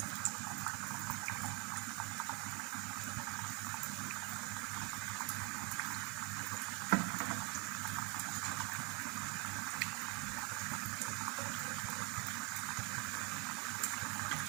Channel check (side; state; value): left; quieter; 27.5 dB